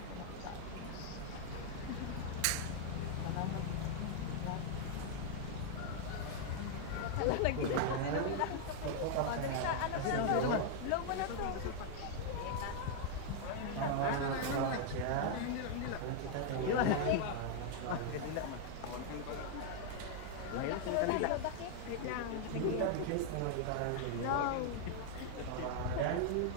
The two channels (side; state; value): both; different; correlation 0.00